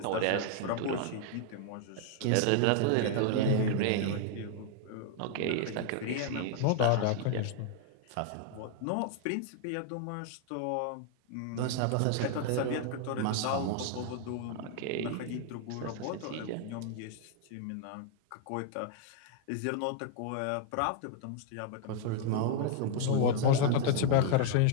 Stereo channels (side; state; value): both; different; correlation 0.00